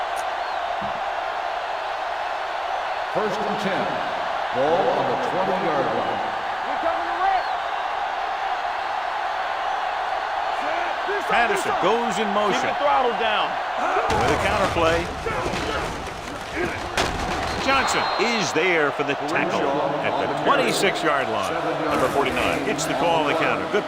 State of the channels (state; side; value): identical; both; correlation 1.00